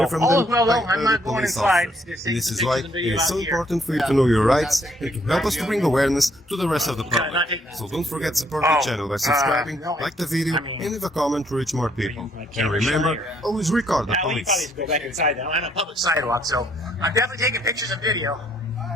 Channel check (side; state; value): both; normal; correlation 0.68